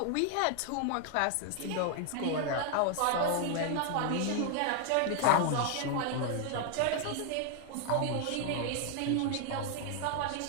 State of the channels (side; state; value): both; different; correlation 0.00